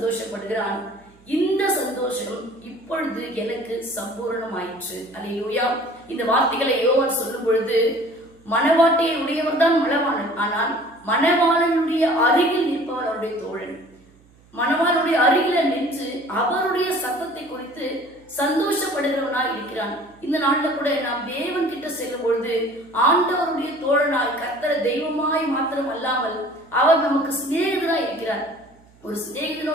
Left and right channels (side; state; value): right; noise; hum, 29 dB below the sound